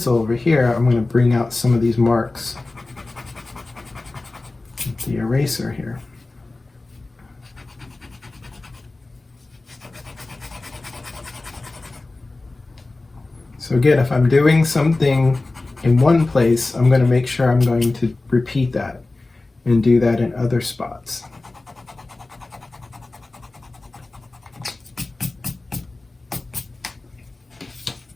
over here. I'm going to bring out some of these marks with the eraser here. So again, if I'm doing something in one place, I'm going to make sure I'm going to repeat that and do that in other spots.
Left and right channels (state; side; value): quieter; right; 3.2 dB